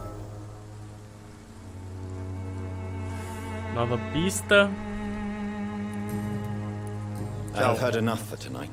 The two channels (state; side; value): identical; both; correlation 1.00